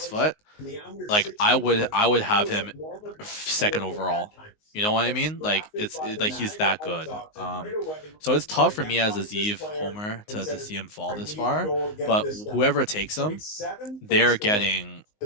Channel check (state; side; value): late; right; 19 ms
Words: foot, like I would have him second overall. You know what I mean? Like, like he's that good. So it's tough for me as a Zeev homer to see him fall this far. But whoever takes him, they're getting